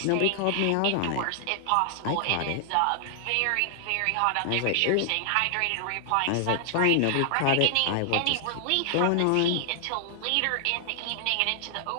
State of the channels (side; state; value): both; different; correlation 0.00